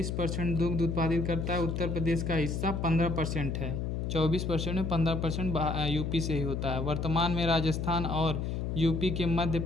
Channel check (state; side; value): noise; left; hum, 2 dB below the sound